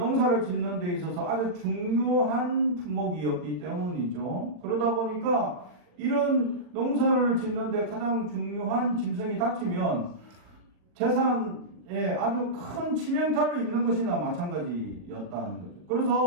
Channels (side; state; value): left; late; 40 ms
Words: 짓는 데 있어서 아주 중요한 품목이었기 때문이죠. 그러다 보니까 이런 농사를 짓는 데 가장 중요한 짐승이 다치면 재산에 아주 큰 치명타를 입는 것이나 마찬가지였다는 거죠.